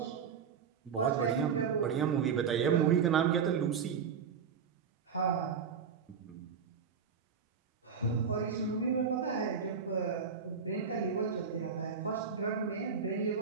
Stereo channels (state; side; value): quieter; left; 6.5 dB